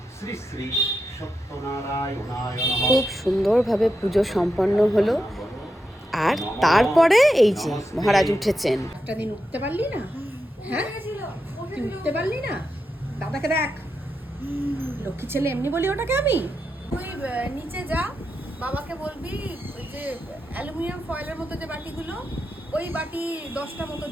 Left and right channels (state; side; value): normal; both; correlation 0.87